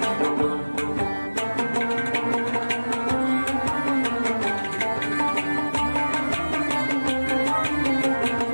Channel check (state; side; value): inverted; both; correlation -1.00